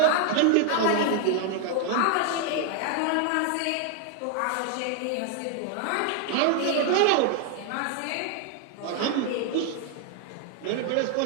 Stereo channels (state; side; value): different; both; correlation 0.00